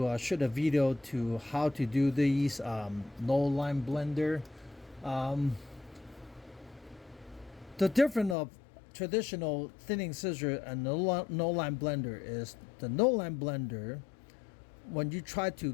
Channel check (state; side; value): drops out; right; at 8.3 s